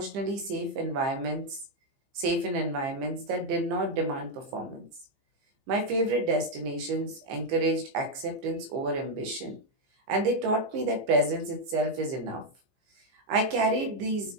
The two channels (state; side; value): late; left; 15 ms